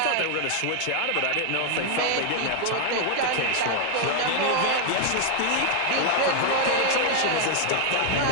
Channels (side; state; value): both; different; correlation 0.00